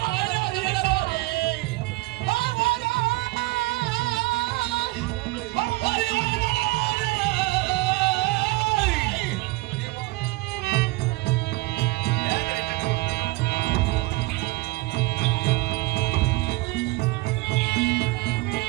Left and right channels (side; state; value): left; quieter; 22.1 dB